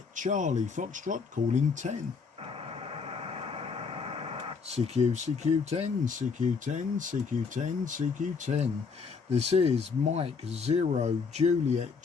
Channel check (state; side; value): quieter; right; 5.3 dB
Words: Charlie Foxtrot calling 10. CQ10 CQ10 CQ10 CQ10. This is Mike 0 Juliet